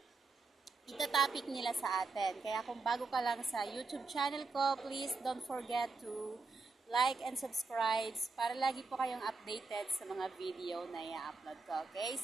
ita-topic nila sa atin. Kaya kung bago ka lang sa YouTube channel ko, please don't forget to like and subscribe para lagi po kayong updated sa mga video na i-upload ko. Okay?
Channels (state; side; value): quieter; left; 4.0 dB